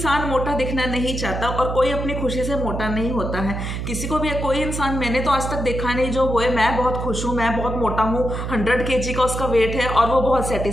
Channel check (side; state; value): right; noise; hum, 4 dB below the sound